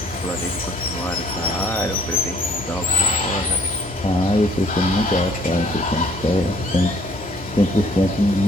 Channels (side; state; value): both; normal; correlation 0.60